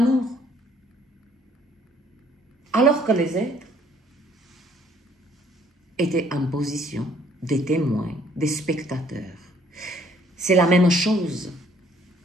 Alors que les êtres étaient en position des témoins, des spectateurs. C'est la même chose.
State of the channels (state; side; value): normal; both; correlation 0.62